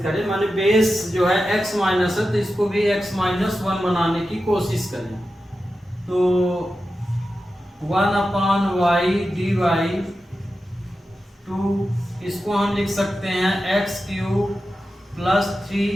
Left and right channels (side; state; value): both; normal; correlation 0.92